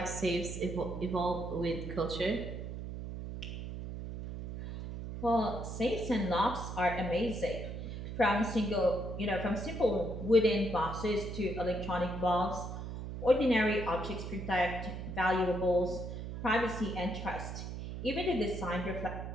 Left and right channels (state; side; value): noise; right; hum, 7 dB below the sound